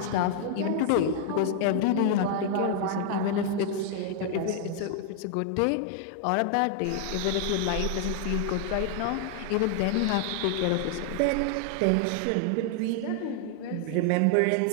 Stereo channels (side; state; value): both; different; correlation 0.00